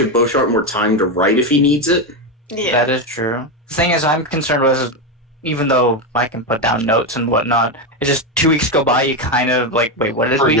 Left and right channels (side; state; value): both; normal; correlation 0.10